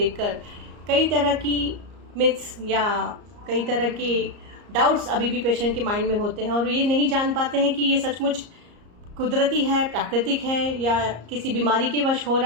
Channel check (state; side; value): late; left; 34 ms